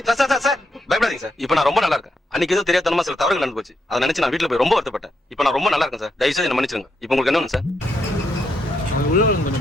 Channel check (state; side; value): normal; both; correlation 0.80